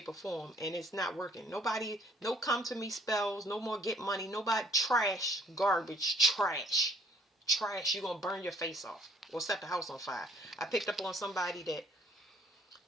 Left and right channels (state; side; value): normal; both; correlation 0.60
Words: or form, and it's not working. Nobody, no come to me spells, no more get money, nobody, trash, garbage, trash. You're going to burn your face off or set the house on fire. I picked up on somebody that